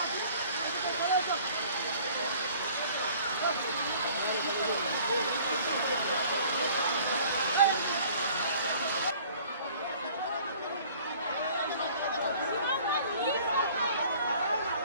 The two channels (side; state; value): both; inverted; correlation -0.52